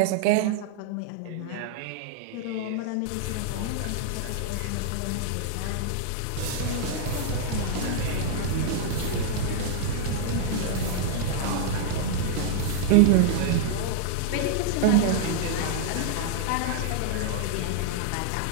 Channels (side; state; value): both; different; correlation -0.01